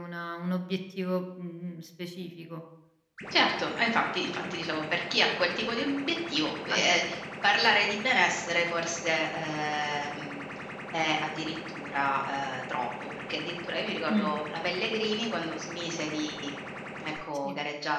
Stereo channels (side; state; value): both; identical; correlation 1.00